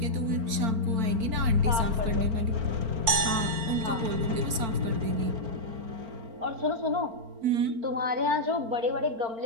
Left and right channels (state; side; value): late; left; 4.4 ms